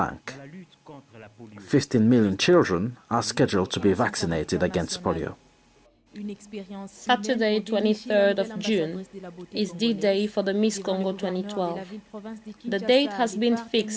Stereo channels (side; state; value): both; identical; correlation 1.00